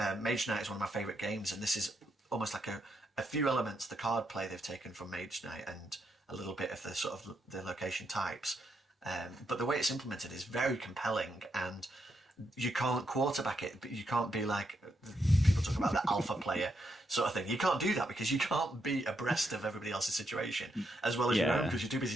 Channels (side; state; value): both; normal; correlation 0.80